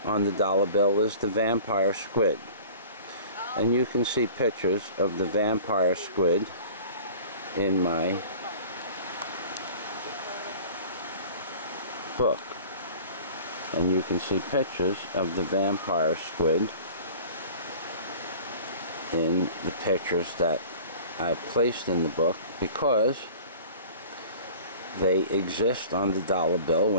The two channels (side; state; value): both; inverted; correlation -0.44